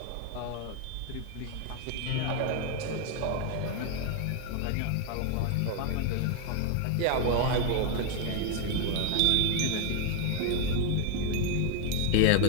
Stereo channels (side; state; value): both; different; correlation 0.01